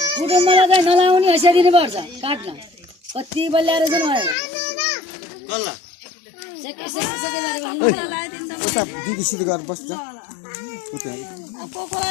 कुटुम्बलाई चाहिँ नलाउने हैसियत दिनुपर्छ काट्न कति बल्याएर चाहिँ कल्ला उता दिदीसित गएर बस्छ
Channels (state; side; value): drops out; right; at 4.4 s